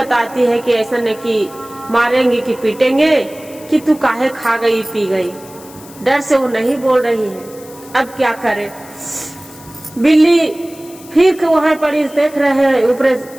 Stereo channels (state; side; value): noise; left; hiss, 21 dB below the sound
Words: है कि ऐसा नहीं कि मारेंगे कि पीटेंगे कि तू काहे खा गई पी गई, डर से वो नहीं बोल रही है। अब क्या करे। बिल्ली फिर वहां पर देख रहे हैं, ऊपर